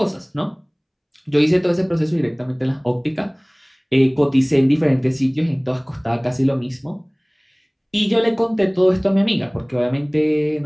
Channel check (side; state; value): both; identical; correlation 1.00